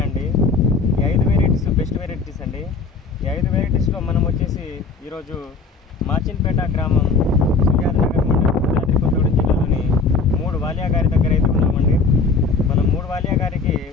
అండి. ఈ 5 వెరైటీస్ బెస్ట్ వెరైటీస్ అండి. ఈ 5 వెరైటీస్లో మనం వచ్చేసి ఈరోజు మాచిన్పేట గ్రామం, సుజాత నగర్ మండలం, భద్రాద్రి కొత్తగూడెం జిల్లాలోని 3 వాలియా గారి దగ్గర అయితే ఉన్నామండి. మనం 3 వాలియా గారికి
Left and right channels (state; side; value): quieter; right; 4.3 dB